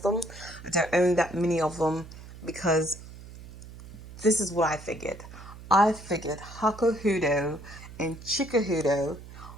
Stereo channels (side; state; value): right; noise; hum, 16 dB below the sound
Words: them. I don't own that many of them because this is what I figured. I figured Hakuhodo and Chikuhodo,